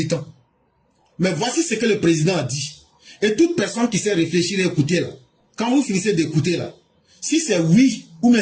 Mais voici ce que le président a dit. Et toute personne qui sait réfléchir et écouter là, quand vous finissez d'écouter là, si c'est oui ou même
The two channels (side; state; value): both; identical; correlation 1.00